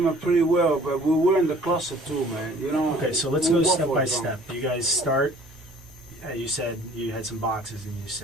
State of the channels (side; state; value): both; normal; correlation 0.53